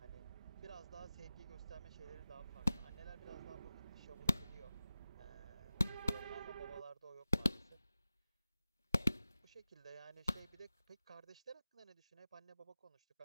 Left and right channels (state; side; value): inverted; both; correlation -0.95